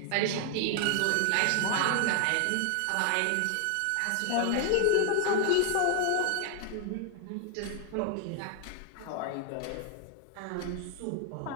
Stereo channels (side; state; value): both; different; correlation 0.00